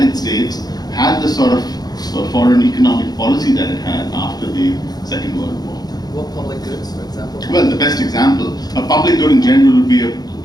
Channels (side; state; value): right; late; 0.19 ms